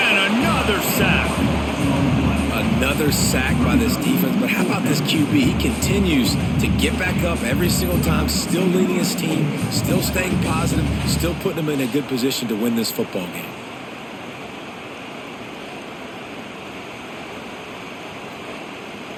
sack by this defense, but how about this QB? He continues to get back up every single time, still leading his team, still staying positive, still putting them in a good position to win this football game.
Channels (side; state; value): both; identical; correlation 1.00